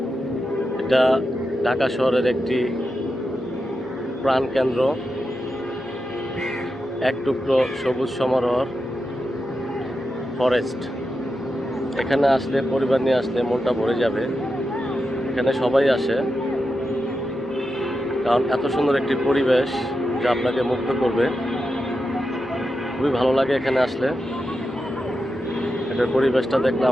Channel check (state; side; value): normal; both; correlation 0.89